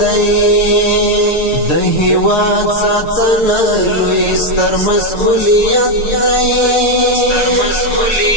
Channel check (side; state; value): right; late; 6.7 ms